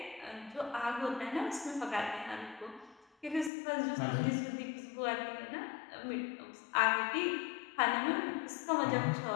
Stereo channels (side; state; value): right; drops out; at 3.5 s